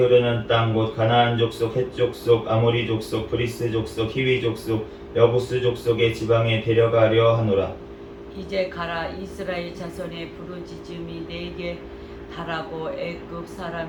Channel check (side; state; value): both; identical; correlation 1.00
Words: 땅 곧 가나안 족속 헷 족속 아모리 족속 브리스 족속 히위 족속 여부스 족속의 지방에 데려가려 하노라. 이제 가라. 이스라엘 자손의 부르짖음이 내게 달하고 애굽